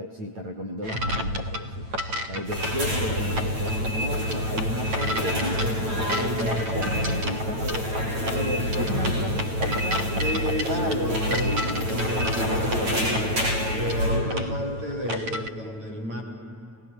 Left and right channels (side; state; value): left; late; 9.0 ms